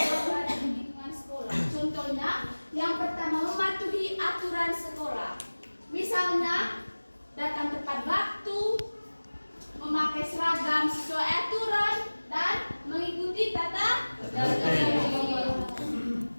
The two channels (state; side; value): inverted; both; correlation -1.00